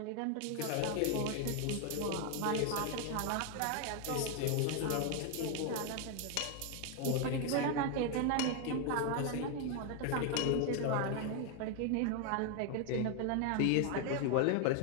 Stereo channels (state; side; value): different; both; correlation 0.01